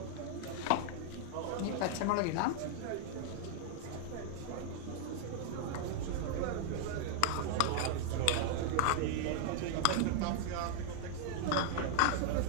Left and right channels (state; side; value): different; both; correlation 0.00